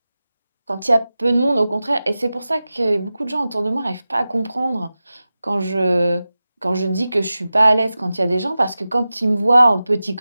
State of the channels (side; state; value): both; inverted; correlation -0.95